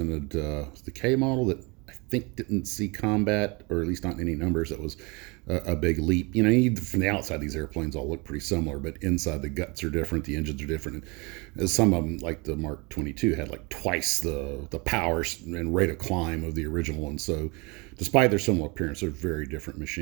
the K model that I think didn't see combat, or at least not in any numbers. That was a big leap. You know, from the outside, these airplanes all look pretty similar, but inside the guts are different, the engines are different. And some of them, like the Mark 22, had like twice the power and rate of climb of the original one. So despite their similar appearance, they're very different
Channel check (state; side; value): quieter; left; 28.3 dB